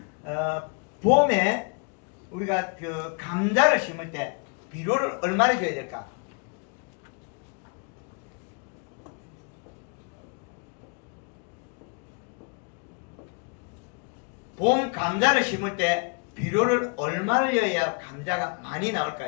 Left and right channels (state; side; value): quieter; right; 36.2 dB